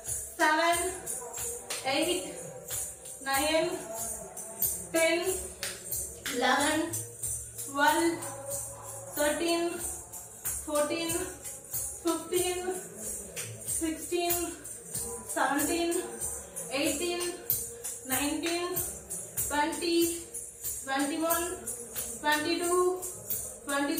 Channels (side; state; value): both; identical; correlation 1.00